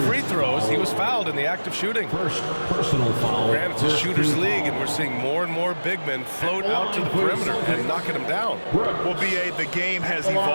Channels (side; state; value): both; inverted; correlation -1.00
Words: free throws. He was fouled in the act of shooting. First personal foul. Granted, it's a shooter's league, and we're seeing more and more big men float out to the perimeter and knocking them down. Well, B.A., the game has